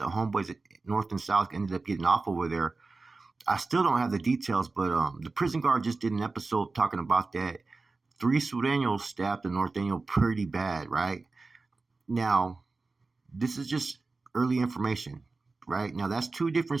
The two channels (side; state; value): left; quieter; 3.7 dB